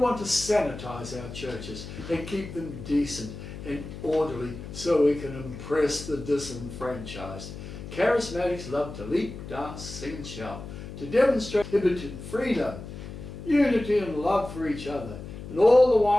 to sanitize our churches and keep them decent and orderly so we can impress the disenfranchised. Charismatics love to leap, dance, sing and shout, to demonstrate inhibited freedom, unity and love for each other, and all the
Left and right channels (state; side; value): noise; left; hum, 11 dB below the sound